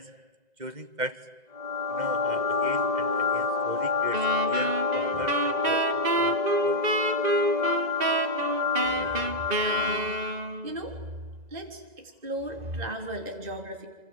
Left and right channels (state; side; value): late; left; 2.0 ms